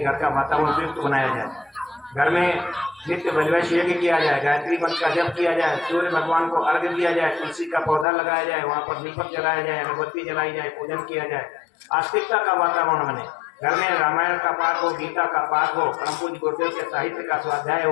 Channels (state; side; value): drops out; right; at 8.1 s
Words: घर का वातावरण उपयुक्त बनाया जाए। घर में नित्य वैश्वैश यज्ञ किया जाए, गायत्री मंत्र का जप किया जाए, सूर्य भगवान को अर्घ्य दिया जाए, तुलसी का पौधा लगाया जाए, वहाँ पर दीपक जलाया जाए, अगरबत्ती जलाई जाए, पूजन किया जाए, आस्तिकता का वातावरण बने। घर में रामायण का पाठ हो, गीता का पाठ हो, परम पूज्य गुरुदेव के साहित्य का स्वाध्याय